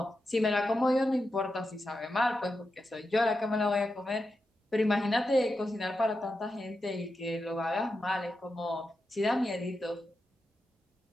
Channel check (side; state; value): both; normal; correlation 0.89